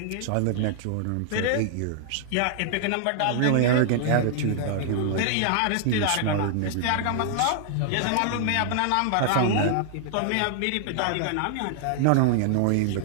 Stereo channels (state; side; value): different; both; correlation 0.00